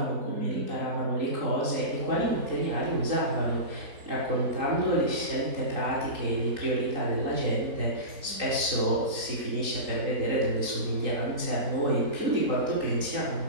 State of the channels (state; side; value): late; left; 3.8 ms